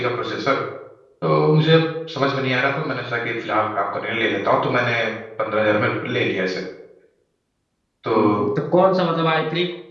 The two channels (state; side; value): identical; both; correlation 1.00